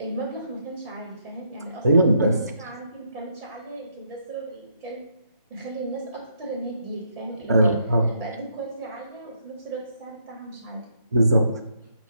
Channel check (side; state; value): both; inverted; correlation -0.73